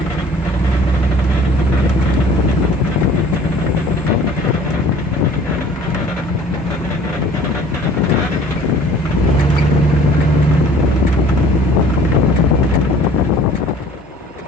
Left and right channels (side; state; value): both; normal; correlation 0.51